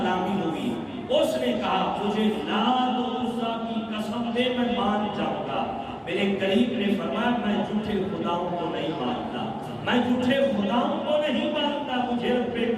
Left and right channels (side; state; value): both; identical; correlation 1.00